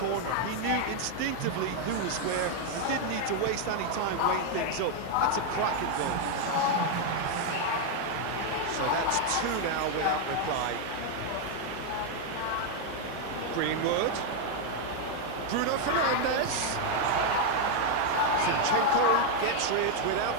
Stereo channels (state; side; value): different; both; correlation 0.01